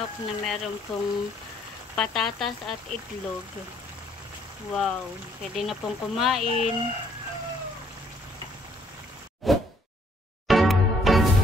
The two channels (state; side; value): normal; both; correlation 0.64